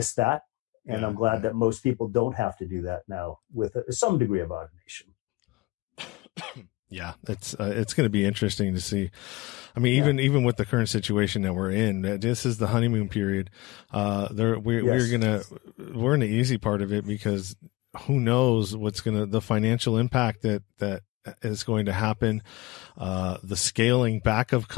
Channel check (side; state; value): right; quieter; 21.5 dB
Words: that. And I'm glad that most people don't have to do that now with some degree of automation. Yeah, it's going to be interesting to see. I mean, even with the current situation that we're in, this is the honeymoon period. We're in the easy part of it, because who knows the financial impact that is going to happen, the scaling back of